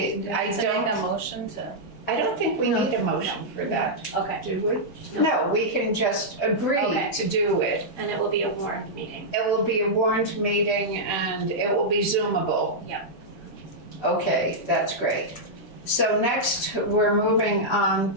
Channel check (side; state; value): both; normal; correlation -0.08